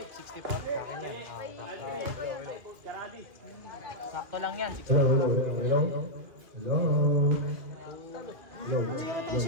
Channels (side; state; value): left; late; 2.4 ms